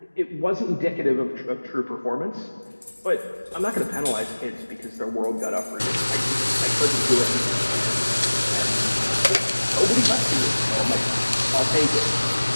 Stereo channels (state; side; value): inverted; both; correlation -1.00